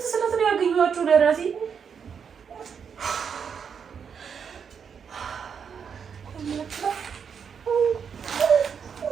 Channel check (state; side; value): quieter; left; 6.9 dB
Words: ስለት ነው ያገኘኋቸው ለራሴ።